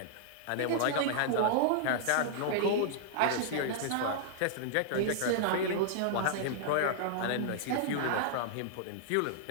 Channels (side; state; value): both; different; correlation -0.01